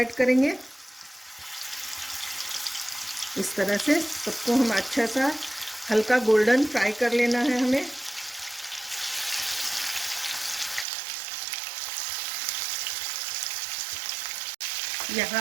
करेंगे। इस तरह से सबको हम अच्छा सा हल्का गोल्डन फ्राई कर लेना है हमें। यहाँ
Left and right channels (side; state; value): left; drops out; at 10.9 s